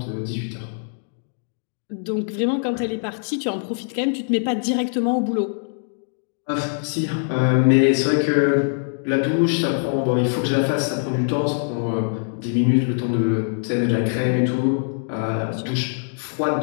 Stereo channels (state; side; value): silent; right; digital silence